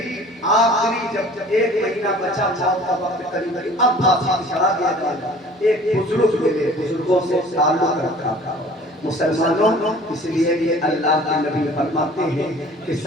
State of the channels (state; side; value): normal; both; correlation 0.48